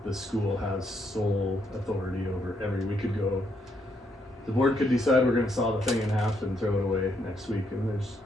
the school has sole authority over we could go, the board could decide we're gonna saw the thing in half and throw it away next week, and there's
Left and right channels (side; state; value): both; normal; correlation 0.76